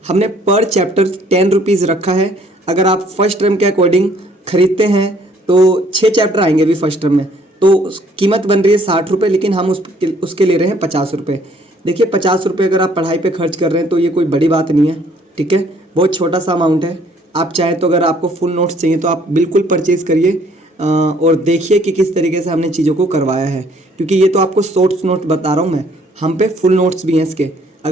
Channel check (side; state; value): both; normal; correlation 0.62